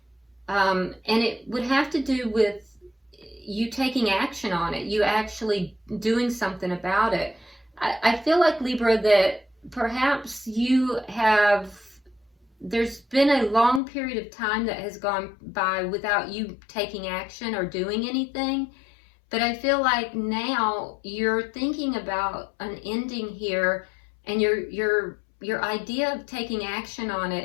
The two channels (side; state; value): right; drops out; at 13.8 s